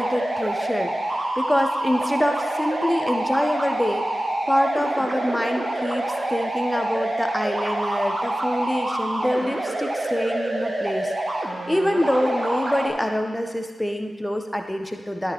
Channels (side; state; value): both; normal; correlation 0.96